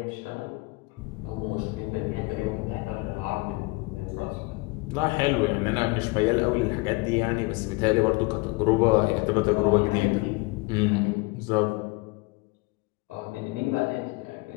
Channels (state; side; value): quieter; right; 25.4 dB